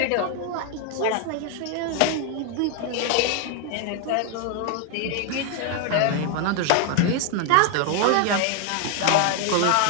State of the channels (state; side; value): different; both; correlation 0.00